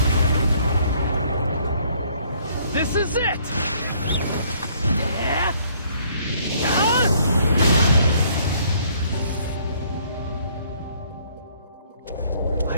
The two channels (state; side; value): inverted; both; correlation -0.63